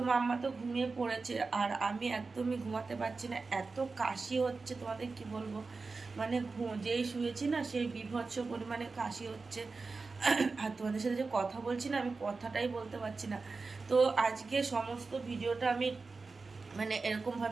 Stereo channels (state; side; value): quieter; left; 4.1 dB